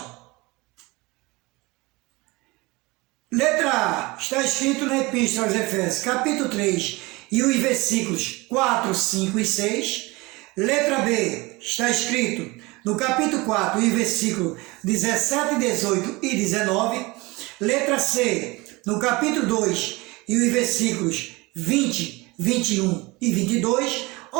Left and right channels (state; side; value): quieter; left; 23.5 dB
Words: Letra A. Está escrito na Epístola aos Efésios, capítulo 3, e os versículos 4, 5 e 6. Letra B. Está escrito no capítulo 4, e versículo 17, 18 e 19. Letra C. No capítulo 2, e os versículos 20, 21 e 22.